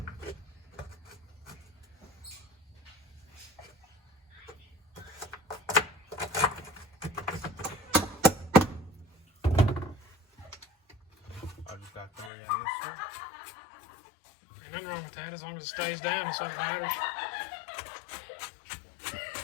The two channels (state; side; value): drops out; right; at 12.3 s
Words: I just got 3 in this one. Ain't nothing wrong with that as long as it stays down, that's all that matters.